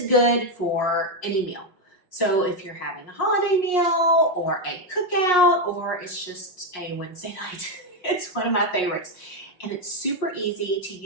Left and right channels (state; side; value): late; right; 5.6 ms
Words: good for any meal. So if you're having a holiday meal or a cookout or it's just a Wednesday night, it's one of my favorites. And it's super easy to